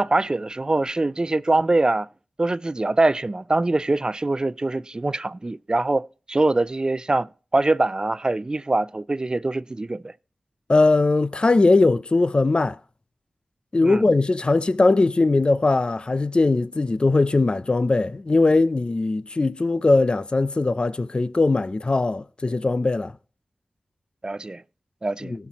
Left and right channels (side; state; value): both; normal; correlation 0.95